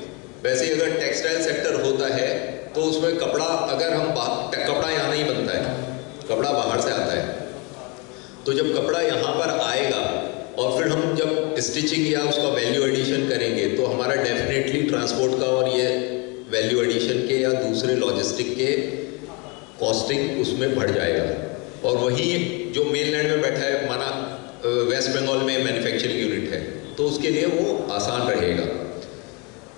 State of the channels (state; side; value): quieter; right; 30.1 dB